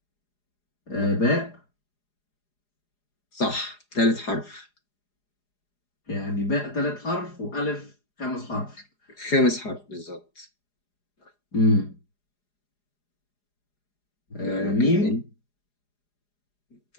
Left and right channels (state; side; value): late; right; 4.9 ms